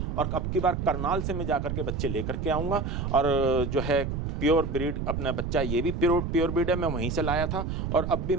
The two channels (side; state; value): right; noise; rumble, 3 dB below the sound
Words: और अब की बार करनाल से मैं जाकर के बच्चे लेकर के आऊँगा। और जो है प्योर ब्रीड अपना बच्चा, ये भी प्योर ब्रीड है, मैं वहीं से लाया था और अब भी